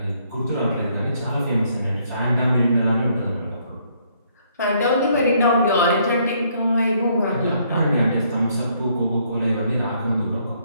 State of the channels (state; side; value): inverted; both; correlation -0.68